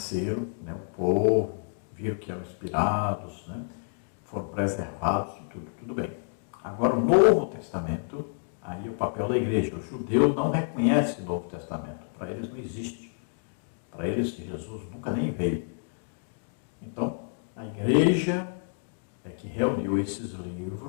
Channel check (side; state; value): right; silent; digital silence